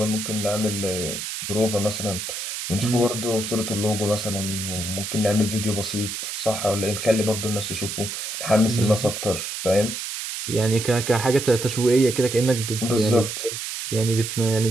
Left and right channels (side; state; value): right; noise; hiss, 5 dB below the sound